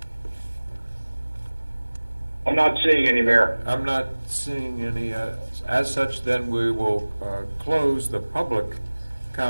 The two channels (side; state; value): both; inverted; correlation -1.00